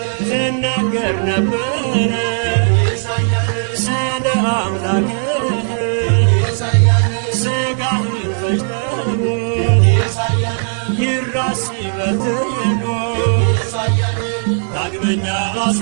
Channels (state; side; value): silent; left; 63 dB below the other